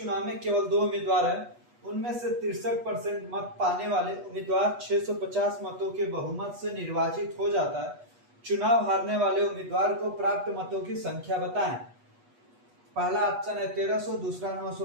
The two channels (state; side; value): late; left; 8.3 ms